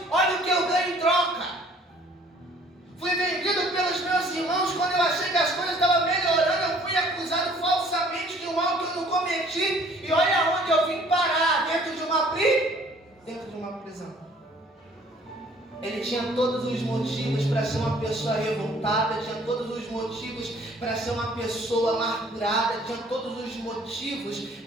olha o que eu ganho em troca. Fui vendido pelos meus irmãos quando eu achei que as coisas estavam melhorando, eu fui acusado falsamente de um mal que eu não cometi, e olha onde eu vim parar, dentro de uma prisão. Ele tinha todos os motivos para ser uma pessoa revoltada, tinha todos os motivos para ser uma pessoa amargurada, tinha todos os motivos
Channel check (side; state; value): both; normal; correlation 0.56